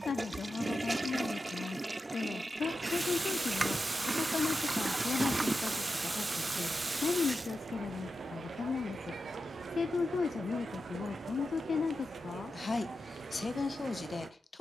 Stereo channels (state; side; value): normal; both; correlation 0.90